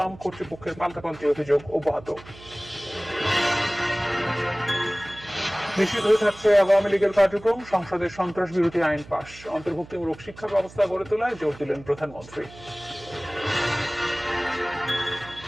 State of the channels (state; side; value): noise; right; hum, 19 dB below the sound